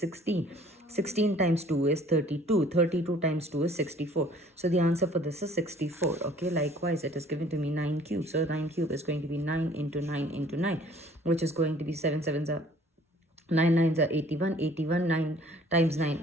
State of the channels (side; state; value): both; normal; correlation 0.54